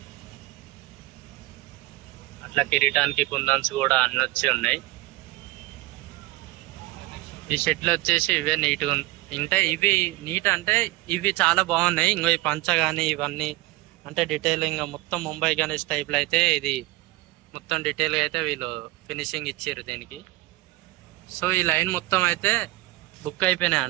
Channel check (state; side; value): quieter; left; 19.3 dB